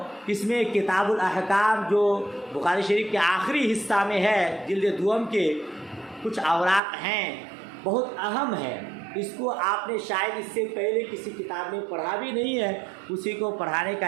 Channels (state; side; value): drops out; left; at 6.8 s